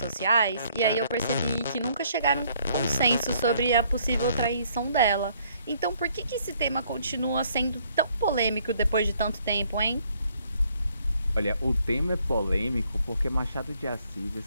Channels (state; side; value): inverted; both; correlation -0.65